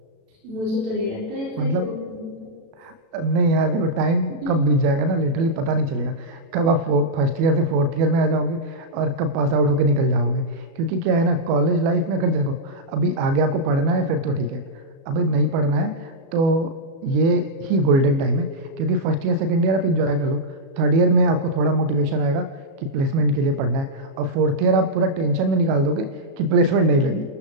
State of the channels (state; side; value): late; left; 36 ms